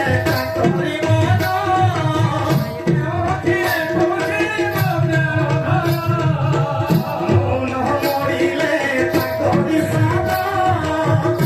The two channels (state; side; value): identical; both; correlation 1.00